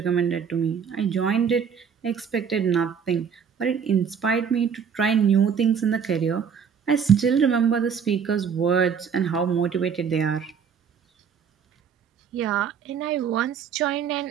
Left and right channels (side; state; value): left; quieter; 7.0 dB